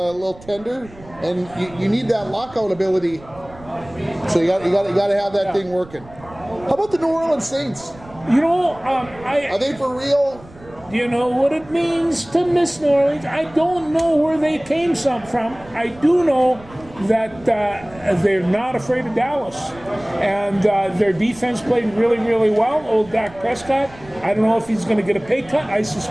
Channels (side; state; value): right; noise; rumble, 21 dB below the sound